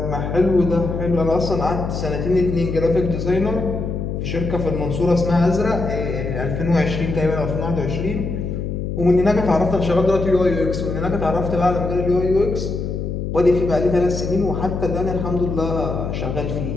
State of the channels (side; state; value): left; noise; hum, 4 dB below the sound